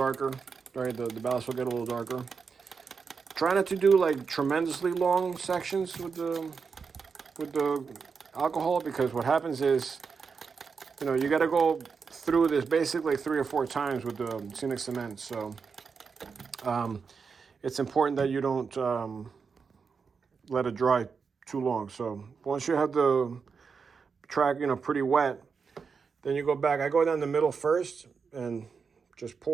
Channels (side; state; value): left; quieter; 5.5 dB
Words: right? The ballast will get a little darker. Try not to do like tremendously long sections with the alcohol, because what happens is, you know, you got to go through this basically 3 or 4 times with the scenic cement. So it's important that you don't let it dry too long. So once you have the track, you know, pretty wet, then you go back. I go down the middle first and just